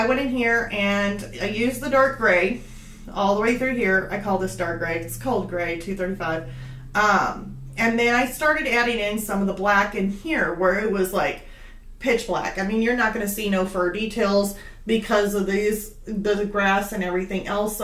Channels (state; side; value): identical; both; correlation 1.00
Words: went in here and I used the dark gray all the way through here. I call this dark gray. It's cold gray, 235. And then I started adding in some of the black in here where it was like pitch black. I mean, you're not going to see no fur details because of the grass and everything else.